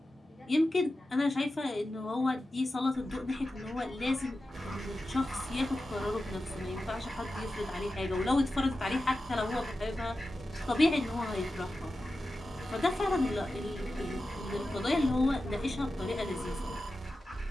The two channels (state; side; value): normal; both; correlation 0.92